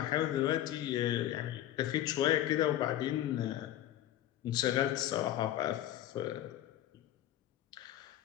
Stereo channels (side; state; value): right; quieter; 12.7 dB